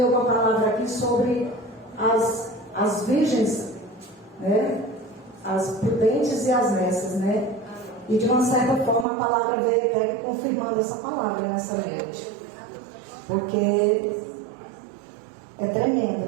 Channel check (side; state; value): left; drops out; at 9.1 s